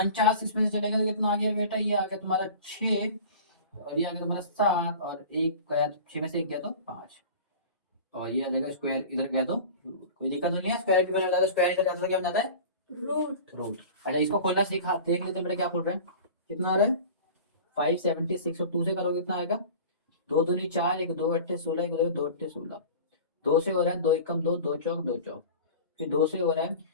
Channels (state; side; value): inverted; both; correlation -0.38